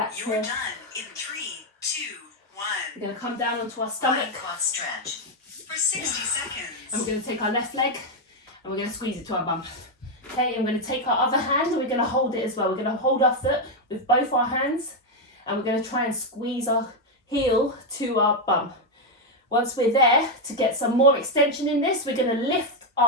You're here. done in 3, 2, 1. We're going to come down onto our stomach, Lying quad stretch for 60 seconds. and we're going to take our left leg and we're going to squeeze it to our bum. Okay, I'm going to take our other hand and we're going to hold it as well. We're going to hold our foot with both our hands, and we're going to try and squeeze our heel to our bum. Once we're there, to get some more extension in this, we're going to lift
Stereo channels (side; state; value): both; normal; correlation 0.03